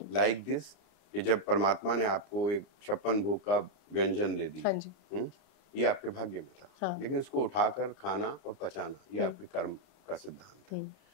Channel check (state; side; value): late; right; 32 ms